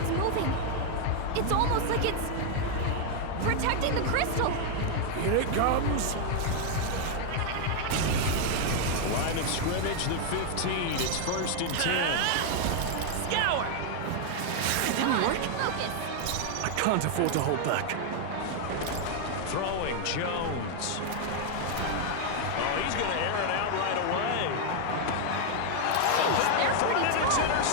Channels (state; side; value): different; both; correlation 0.00